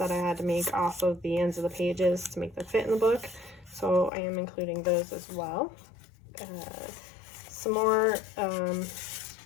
I had to make off of the ends of the pages to make them fit in the book, so I am including those as well. Some more, I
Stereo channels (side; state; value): right; drops out; at 4.1 s